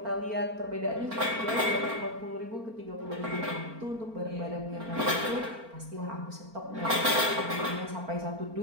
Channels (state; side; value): late; left; 4.4 ms